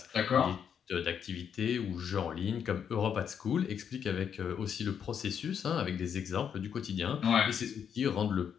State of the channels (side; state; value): right; quieter; 7.9 dB